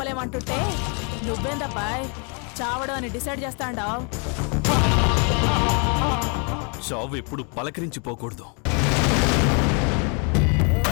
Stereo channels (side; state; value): right; quieter; 36.6 dB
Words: నువ్వేందబ్బాయ్ చావడం అని డిసైడ్ చేస్తాండావు? చావు ఎప్పుడు పలకరించిపోకూడదు.